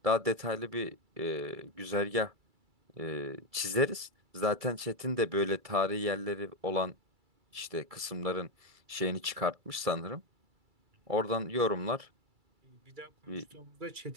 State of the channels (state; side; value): late; left; 2.3 ms